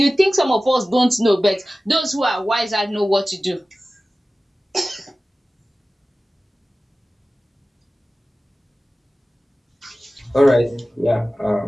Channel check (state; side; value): normal; both; correlation 0.96